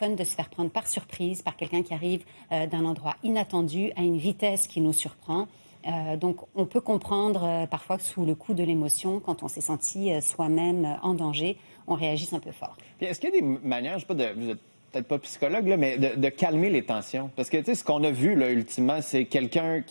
de se faire prendre par surprise par quelqu'un qui arrive d'un endroit inattendu, à une vitesse qui nous surprend. Donc, on peut comprendre parfois que sous le coup de l'émotion, quand on s'est senti soi-même en danger, on réagisse un peu fort. Puis est-ce qu'il y a des manières, je sais pas, vous êtes peut-être pas psychologue, là, mais de calmer les tensions? Parce que, tu sais, ce qu'on a vu, là, ultimement, c'est quelqu'un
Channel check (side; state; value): both; inverted; correlation -1.00